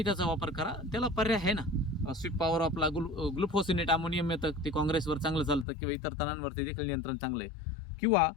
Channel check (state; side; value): drops out; right; at 5.7 s